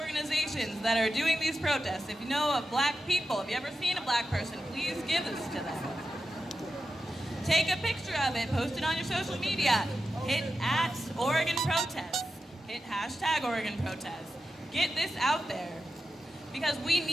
that are doing these protests, if you know of black people, if you ever seen a black person, please give this to them. Take a picture of it, post it on your social media. Hit @OregonProtests. Hit #OregonProtests. Get this out there. Because we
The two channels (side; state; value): both; normal; correlation 0.90